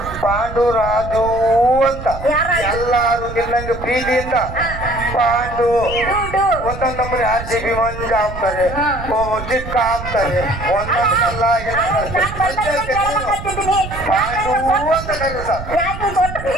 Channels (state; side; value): noise; right; rumble, 10 dB below the sound